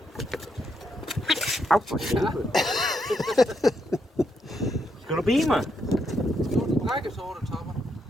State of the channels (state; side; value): normal; both; correlation 0.79